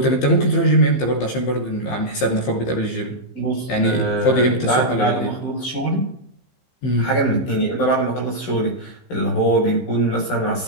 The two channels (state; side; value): late; right; 15 ms